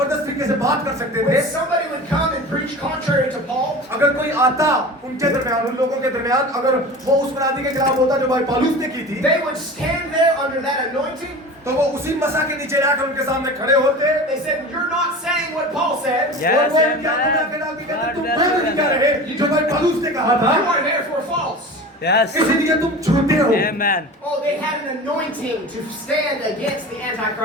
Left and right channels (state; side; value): normal; both; correlation 0.35